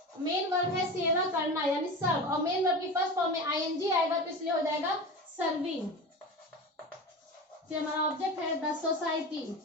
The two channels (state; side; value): normal; both; correlation 0.28